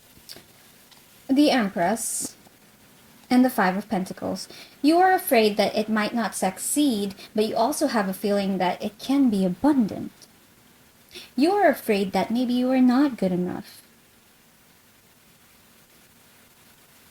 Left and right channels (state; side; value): identical; both; correlation 1.00